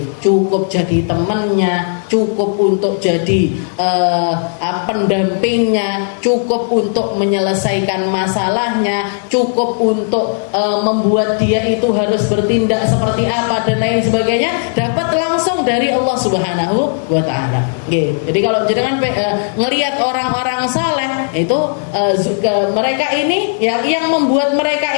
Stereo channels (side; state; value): right; silent; digital silence